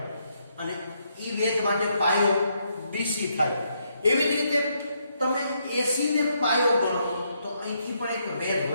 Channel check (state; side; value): inverted; both; correlation -0.76